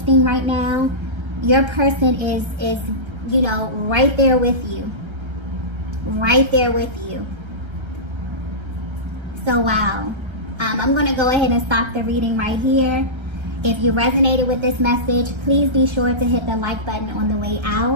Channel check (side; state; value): left; late; 1.3 ms